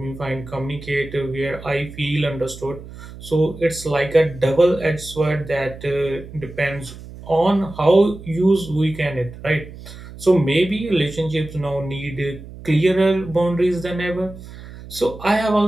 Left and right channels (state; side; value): noise; right; hum, 15 dB below the sound